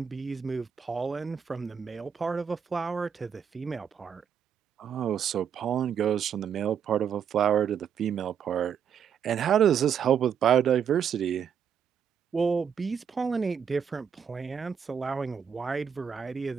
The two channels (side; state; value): left; quieter; 7.7 dB